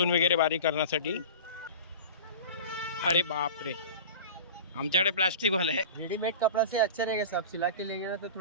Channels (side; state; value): both; inverted; correlation -0.33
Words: वगैरे बारीक करण्यासाठी. अरे बाप रे, आमच्याकडे प्लास्टिकवाला आहे. रेडीमेड कपड़ा से अच्छा रहेगा साहब. सिला के लेंगे ना तो